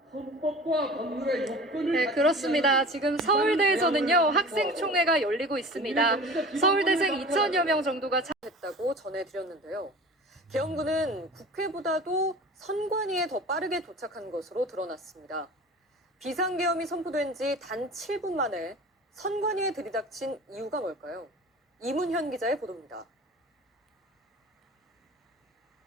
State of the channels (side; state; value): both; normal; correlation 0.39